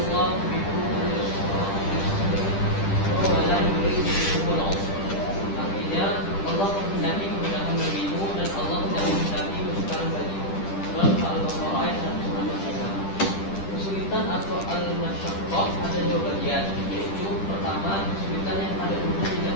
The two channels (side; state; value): right; late; 10 ms